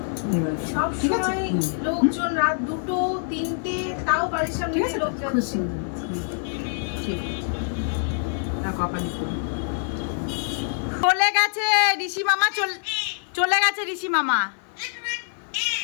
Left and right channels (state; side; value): silent; right; 62 dB below the other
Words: সব ঠিক আছে? সময় লোকজন রাত 2টো 3টে তাও বাড়ির সামনে ঠিক আছে, লোক খুব যাচ্ছে। সুন্দর। ঠিক আছে, না কপালি করুন। চলে গেছে ঋষি মামা, চলে গেছে ঋষি মামা।